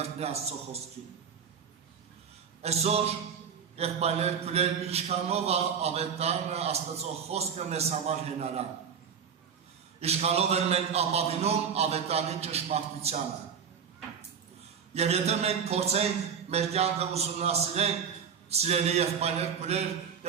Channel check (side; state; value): left; quieter; 7.0 dB